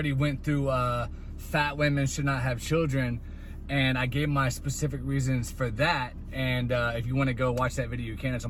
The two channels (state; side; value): identical; both; correlation 1.00